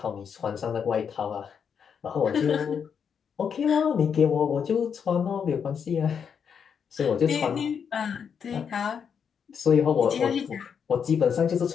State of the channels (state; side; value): quieter; right; 7.1 dB